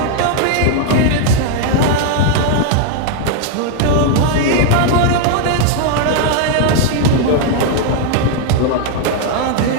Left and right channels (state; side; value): different; both; correlation 0.00